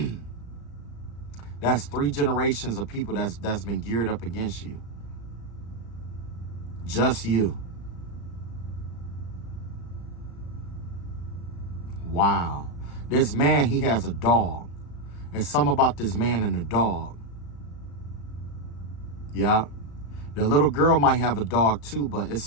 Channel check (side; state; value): right; late; 35 ms